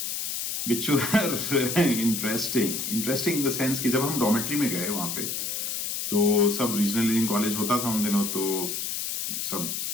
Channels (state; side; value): noise; left; hiss, 3 dB below the sound